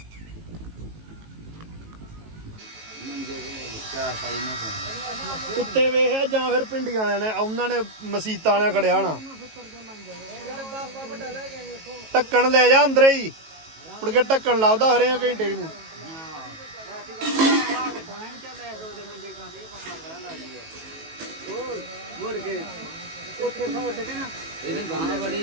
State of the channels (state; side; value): late; left; 18 ms